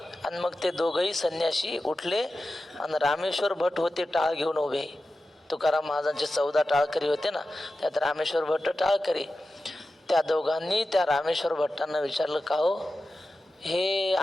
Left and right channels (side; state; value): both; normal; correlation 0.93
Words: आणि मग ते दोघंही संन्यासी उठले आणि रामेश्वर भट होते टाळ घेऊन उभे. तुकाराम महाराजांचे 14 टाळकरी होते ना, त्यात रामेश्वर भट्ट टाळकरी. त्या दोघांनी त्या रामेश्वर भट्टांना विचारलं, का हो हे